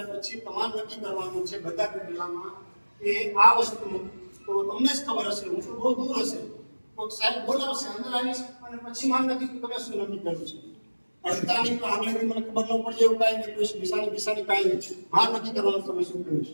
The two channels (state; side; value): inverted; both; correlation -1.00